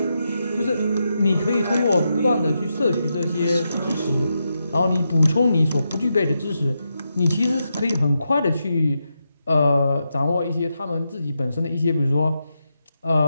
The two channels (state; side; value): inverted; both; correlation -0.85